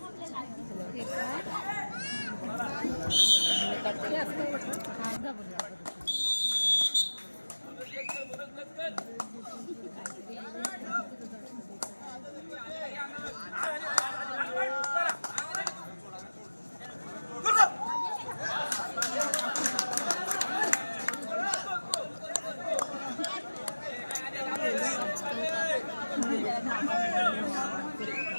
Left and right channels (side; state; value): both; inverted; correlation -1.00